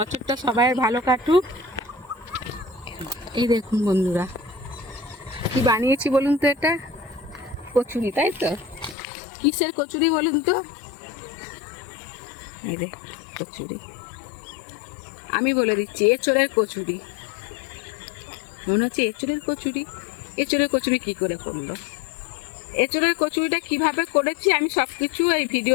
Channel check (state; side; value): drops out; right; at 9.0 s